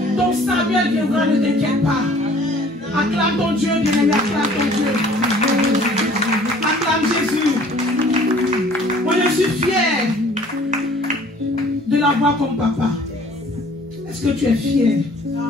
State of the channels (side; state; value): both; normal; correlation 0.53